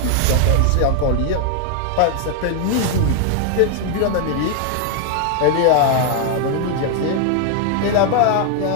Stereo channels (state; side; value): different; both; correlation 0.00